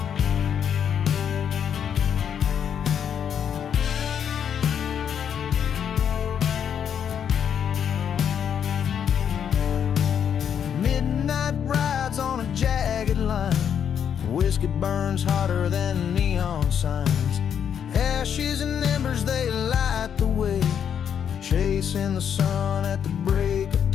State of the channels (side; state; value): right; quieter; 8.3 dB